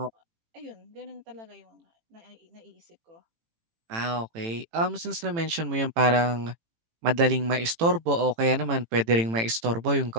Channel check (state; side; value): late; left; 18 ms